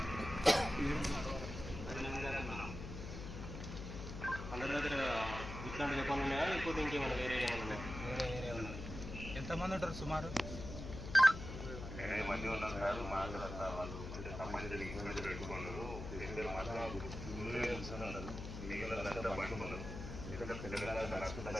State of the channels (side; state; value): left; noise; hum, 8 dB below the sound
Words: అందరి దగ్గర ఇట్లాంటి చెప్పాలి ఉన్నాయా లేకపోతే ఇంకేమైనా వేరే ఏమైనా ఉన్నాయా? ఎంతమంది ఉంటారు సుమారు?